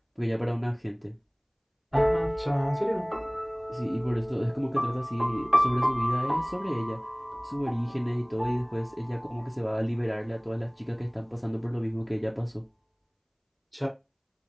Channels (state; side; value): identical; both; correlation 1.00